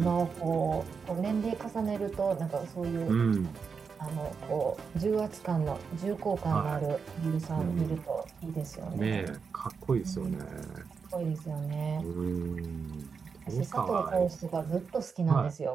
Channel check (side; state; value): left; quieter; 5.6 dB